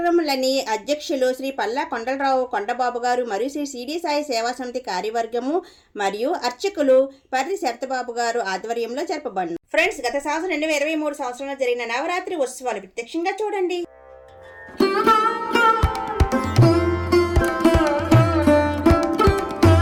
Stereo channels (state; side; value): identical; both; correlation 1.00